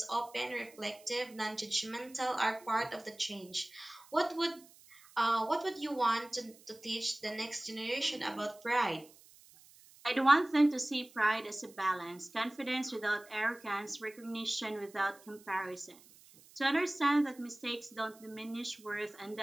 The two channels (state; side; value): noise; right; hiss, 24 dB below the sound